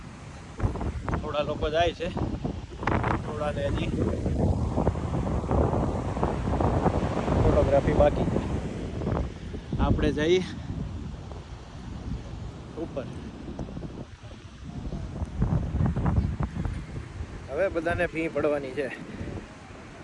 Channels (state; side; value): identical; both; correlation 1.00